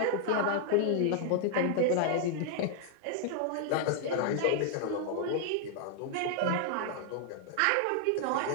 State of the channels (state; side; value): different; both; correlation 0.00